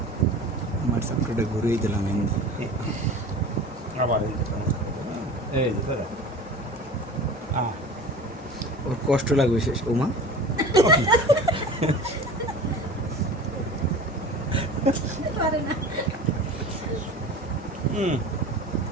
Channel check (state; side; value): normal; both; correlation 0.37